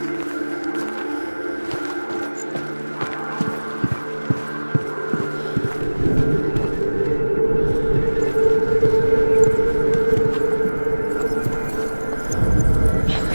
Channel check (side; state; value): both; inverted; correlation -1.00